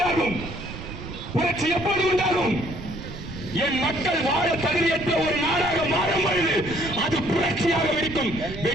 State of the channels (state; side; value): noise; right; rumble, 11 dB below the sound